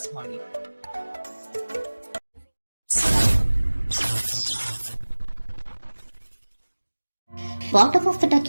ಮಾಡಿ. ಬಾಟಮ್ ಆಫ್ ದ ಡಕ್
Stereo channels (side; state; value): both; inverted; correlation -1.00